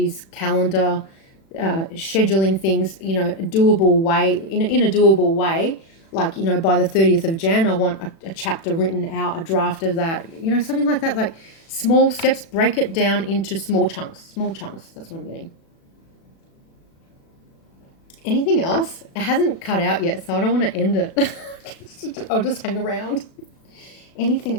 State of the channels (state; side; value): late; right; 36 ms